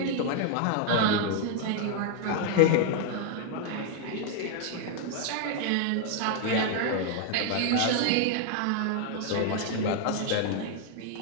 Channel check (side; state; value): both; different; correlation 0.00